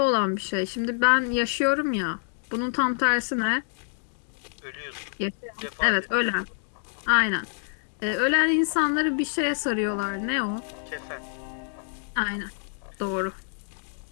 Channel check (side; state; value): right; silent; digital silence